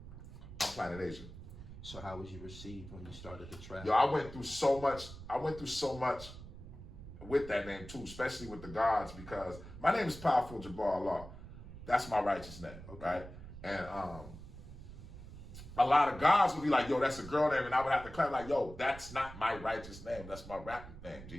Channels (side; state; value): right; noise; rumble, 14 dB below the sound